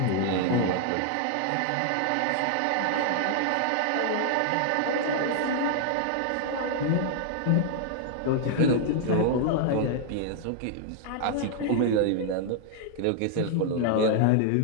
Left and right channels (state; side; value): different; both; correlation 0.00